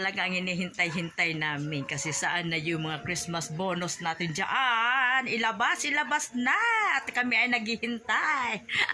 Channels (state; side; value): identical; both; correlation 1.00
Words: ang hinihintay-hintay namin kasi saan na yung mga Christmas bonus natin diyan? Ilabas na at kami ay naghihintay.